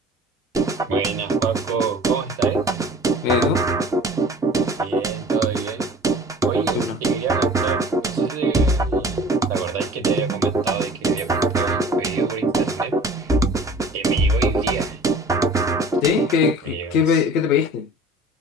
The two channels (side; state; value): both; normal; correlation 0.45